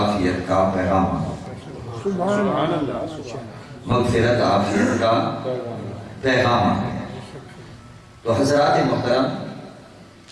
کا پیغام، سبحان اللہ۔ مغفرت عافیت کا پیغام آ گیا۔ تو حضرات محترم،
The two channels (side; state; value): both; identical; correlation 1.00